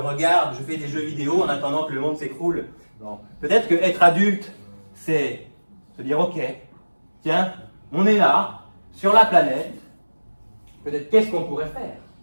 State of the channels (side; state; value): both; inverted; correlation -1.00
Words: je fais des jeux vidéo en attendant que le monde s'écroule. Bon. Peut-être que être adulte, c'est se dire ok, tiens, on est là, sur la planète, peut-être qu'est-ce qu'on pourrait faire